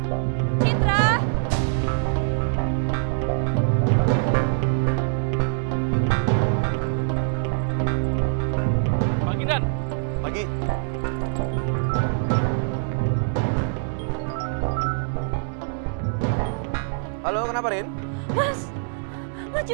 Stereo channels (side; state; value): left; silent; digital silence